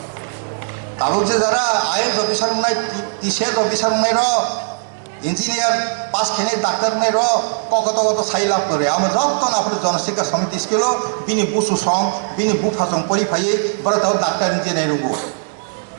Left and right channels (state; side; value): silent; left; digital silence